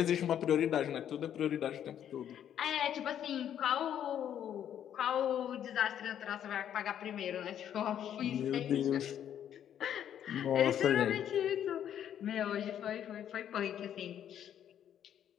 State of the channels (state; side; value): quieter; right; 9.9 dB